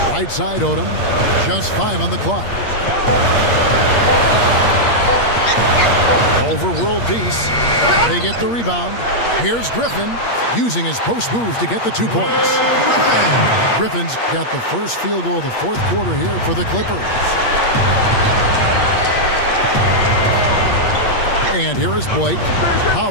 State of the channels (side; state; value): right; late; 8.5 ms